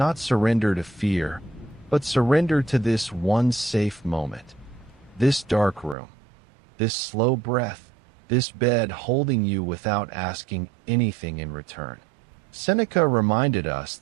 surrender to fear, but surrender to this one safe moment. This dark room, this slow breath, this bed holding you without asking anything in return. Seneca reminded us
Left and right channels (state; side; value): drops out; left; at 6.0 s